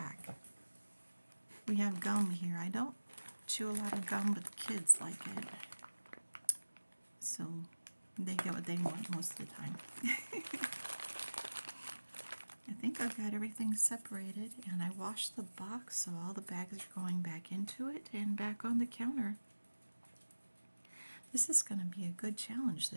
We have gum here. I don't chew a lot of gum, but the kids like it. So They get what they want most of the time. I think I've got everything separated, and I washed the box so all the bags are going back into it and back on the counter. This is going to be a good challenge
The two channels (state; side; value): inverted; both; correlation -1.00